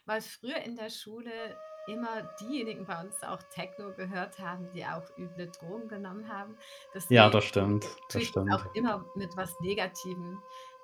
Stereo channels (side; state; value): both; identical; correlation 1.00